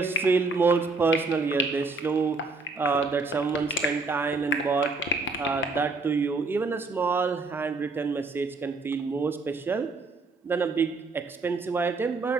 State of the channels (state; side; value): quieter; left; 3.6 dB